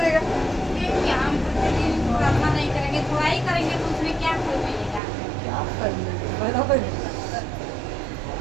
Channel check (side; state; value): left; drops out; at 5.0 s